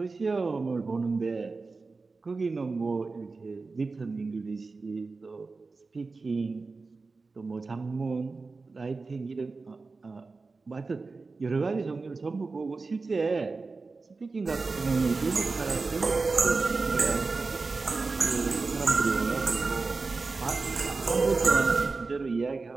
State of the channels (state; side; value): quieter; left; 4.0 dB